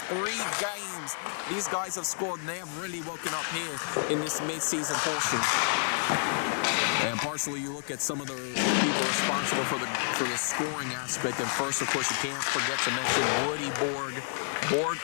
3 games. These guys have scored, and they have really woken up here in this mid-season portion. And partially, you look at some of the people responsible for the scoring aspect. And first, of course, you can't forget to mention Woody Borg. Borg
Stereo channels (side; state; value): right; silent; digital silence